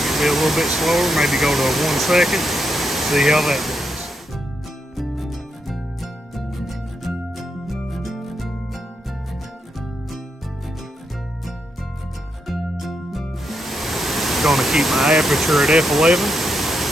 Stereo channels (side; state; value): both; normal; correlation 0.82